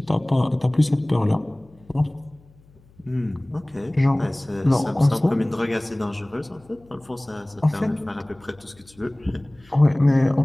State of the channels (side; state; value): left; noise; hum, 28 dB below the sound